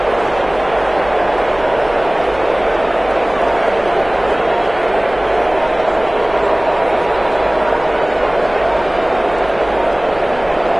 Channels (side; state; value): right; noise; hum, 18 dB below the sound